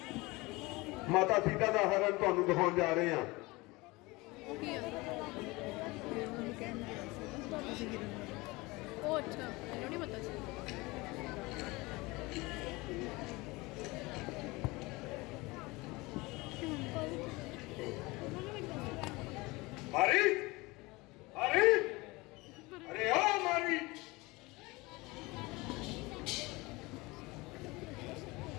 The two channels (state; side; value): quieter; right; 23.0 dB